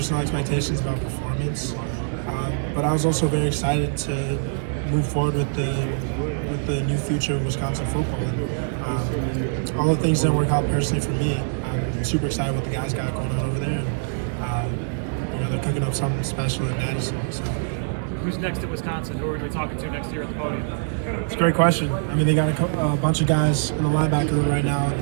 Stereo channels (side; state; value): left; silent; digital silence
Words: expectations about performance, but I was also very excited to move forward with the new future of Wisconsin football. Although things didn't work out personally for me, I'm super excited what the guys got going on over there. And, they're cooking up something special in Madison. So. Who's next at Wisconsin? Who are we talking to next year at the podium? It's a great question. They got a bunch of guys in the linebacker room right now.